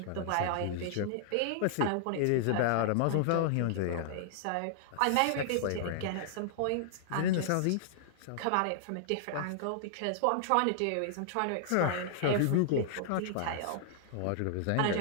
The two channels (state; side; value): different; both; correlation -0.01